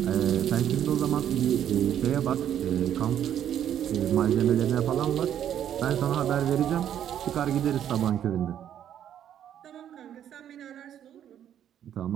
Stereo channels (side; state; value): left; quieter; 10.1 dB